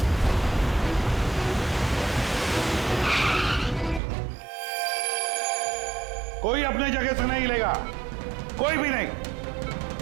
कोई अपने जगह से नहीं लेगा, कोई भी नहीं।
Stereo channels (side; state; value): left; drops out; at 4.0 s